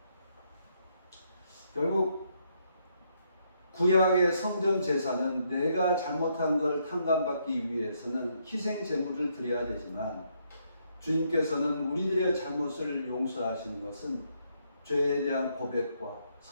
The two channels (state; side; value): inverted; both; correlation -0.74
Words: 결국 구약의 성전 제사는 내가 잘못한 걸 탕감받기 위해서는 희생 제물을 드려야 되지만, 주님께서는 우리들의 잘못을 용서하시는 것은 죄에 대한 고백과